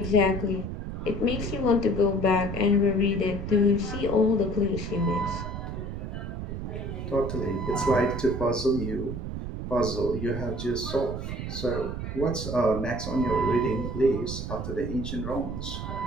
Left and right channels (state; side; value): noise; right; rumble, 6 dB below the sound